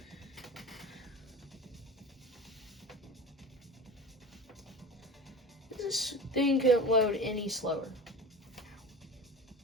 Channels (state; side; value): normal; both; correlation 0.33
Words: This thing couldn't load any slower.